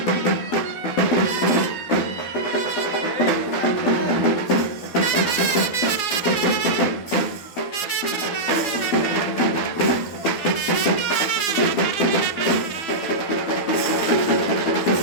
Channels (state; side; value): late; right; 12 ms